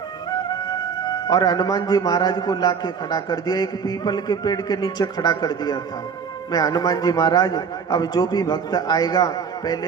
और हनुमान जी महाराज को लाके खड़ा कर दिया। एक पीपल के पेड़ के नीचे खड़ा कर दिया था। मैं हनुमान जी महाराज, अब जो भी भक्त आएगा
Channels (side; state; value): left; quieter; 6.3 dB